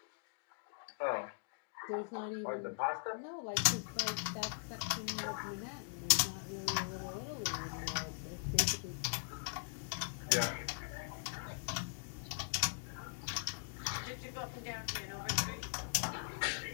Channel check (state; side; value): silent; right; digital silence